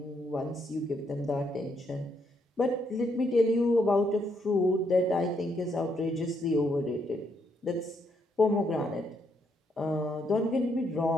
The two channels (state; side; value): normal; both; correlation 0.75